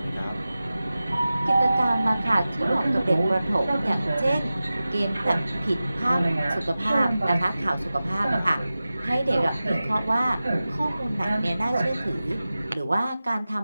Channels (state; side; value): inverted; both; correlation -0.95